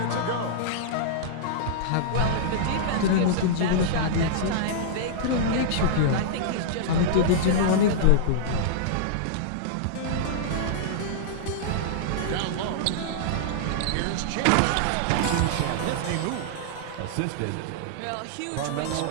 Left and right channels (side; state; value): both; different; correlation -0.02